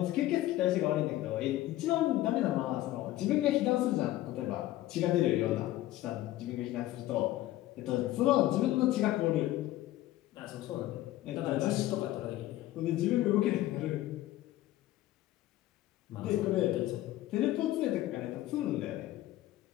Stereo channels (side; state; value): right; quieter; 15.4 dB